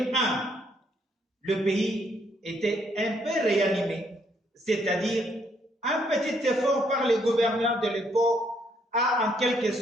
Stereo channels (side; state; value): both; normal; correlation 0.71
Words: le pays était un peu réanimé, c'est-à-dire un petit effort par les gouverneurs de l'époque a en quelque